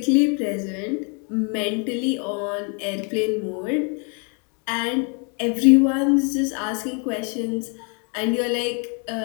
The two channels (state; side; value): quieter; right; 37.5 dB